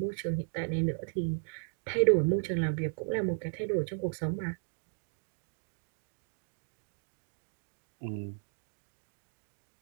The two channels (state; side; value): silent; left; digital silence